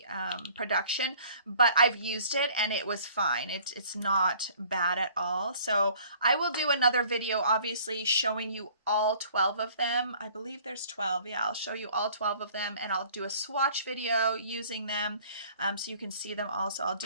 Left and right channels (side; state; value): both; inverted; correlation -0.53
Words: production, but I've used it and it was fine. It's not bad at all. So I will do another video, obviously, showing you all 12 of them. I believe there's 12. Yeah, I'll show you all 12 of them, and I'll do a swatch video using them so you can see them all. So I'll